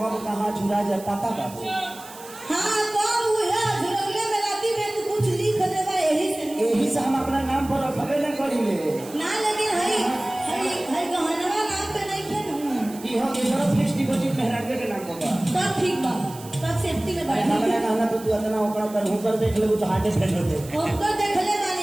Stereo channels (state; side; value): noise; right; hiss, 18 dB below the sound